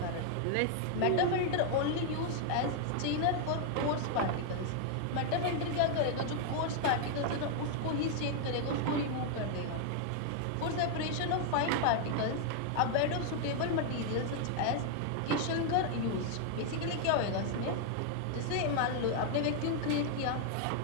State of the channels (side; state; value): both; different; correlation 0.00